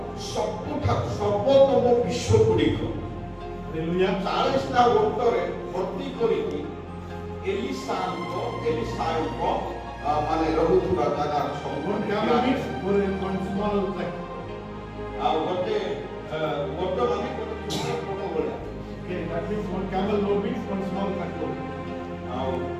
ସବୁଠାରୁ ସର୍ବୋତ୍ତମ ବିଶ୍ୱଗୁଡ଼ିକ Hallelujah. 40ଟା ଓଟରେ ଭର୍ତ୍ତି କରିକି ଏଲିଶାଙ୍କ ମାନେ ରହୁଥିବା ଜାଗାର One camel means one small track. ଆଉ ଗୋଟେ ଓଟ ମାନେ ଗୋଟେ ଛୋଟ ଓଟ ଭଳିଆ। Okay, that means one camel load means one small track load. ଆଉ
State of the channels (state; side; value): identical; both; correlation 1.00